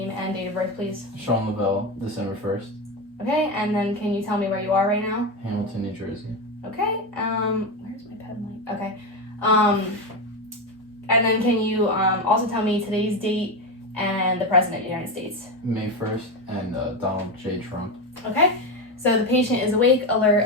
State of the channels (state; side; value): normal; both; correlation 0.15